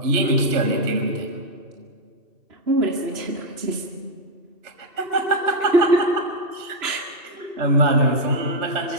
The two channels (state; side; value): late; left; 2.7 ms